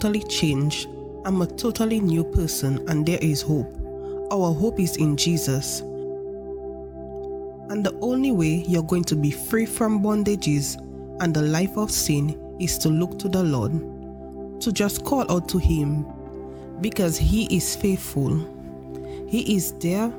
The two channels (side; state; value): both; identical; correlation 1.00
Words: changed. I'm a totally new person and there is hope. Our hope is in Jesus. And the only way you're going to be free from bondages and the life of sin is to look to the Lord, to just call out to Him, because He is faithful. He is there